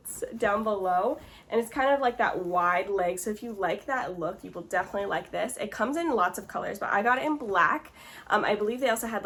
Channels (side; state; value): both; identical; correlation 1.00